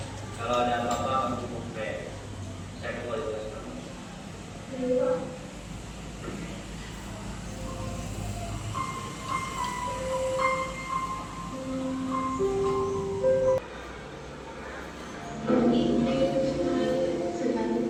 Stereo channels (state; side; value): identical; both; correlation 1.00